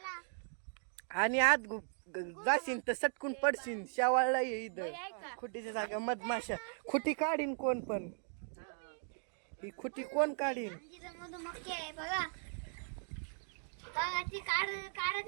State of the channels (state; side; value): silent; left; 52 dB below the other